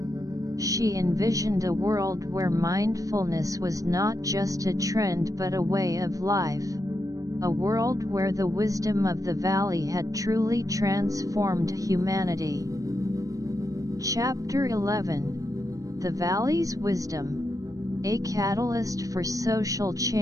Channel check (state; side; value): late; left; 0.16 ms